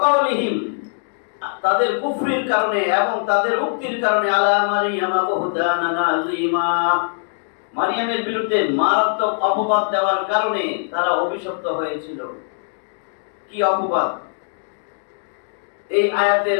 কাউলিহিম তাদের কুফরির কারণে এবং তাদের উক্তির কারণে, আলা মারইয়াম বুহতানান আযীমা মারিয়ামের বিরুদ্ধে মারাত্মক অপবাদ দেওয়ার কারণে তারা অভিশপ্ত হয়েছিল। কি অপবাদ? এই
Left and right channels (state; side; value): silent; right; digital silence